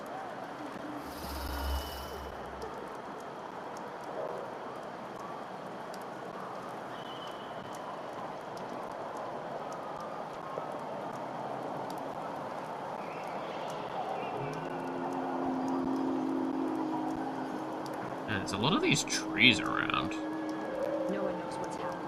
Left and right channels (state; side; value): identical; both; correlation 1.00